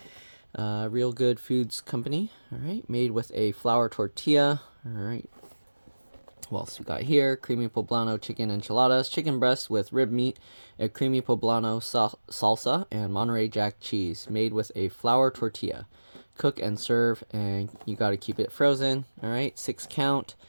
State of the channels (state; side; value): inverted; both; correlation -1.00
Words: Realgood Foods Company. Alright, made with a flour tortilla. Alright. What else we got here? Creamy Poblano chicken enchiladas, chicken breast with rib meat, a creamy Poblano salsa, and Monterey Jack cheese, made with a flour tortilla. Cook and serve, and you got to keep it frozen. All right, 6 count.